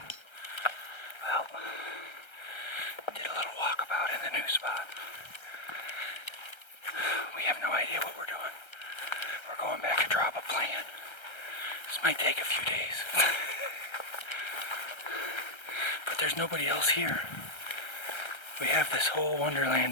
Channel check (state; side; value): late; right; 1.3 ms